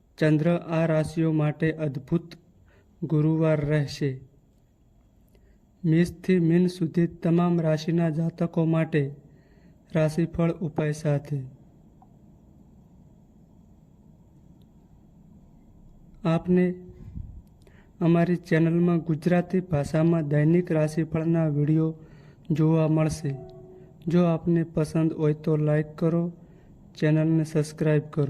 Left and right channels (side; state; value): both; identical; correlation 1.00